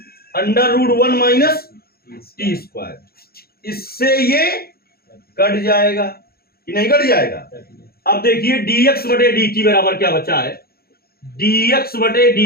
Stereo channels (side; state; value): right; late; 0.44 ms